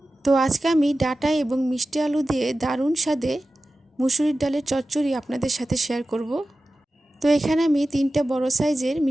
তো আজকে আমি ডাঁটা এবং মিষ্টি আলু দিয়ে দারুণ স্বাদে মুসুরির ডালের চচ্চড়ি আপনাদের সাথে শেয়ার করব। তো এখানে আমি 3টা বড় সাইজের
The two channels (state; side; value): normal; both; correlation 0.94